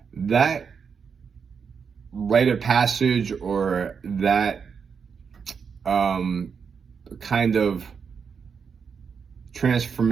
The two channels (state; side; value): quieter; left; 6.2 dB